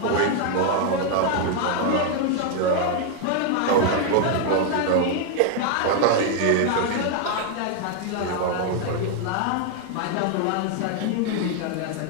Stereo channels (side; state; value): both; different; correlation 0.01